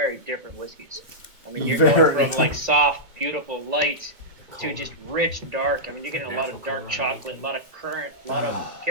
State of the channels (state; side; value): late; left; 2.2 ms